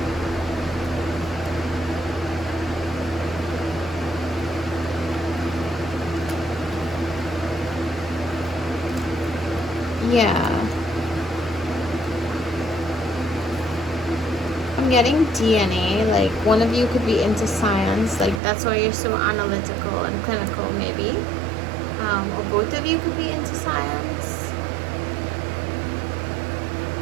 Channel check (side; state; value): left; drops out; at 18.4 s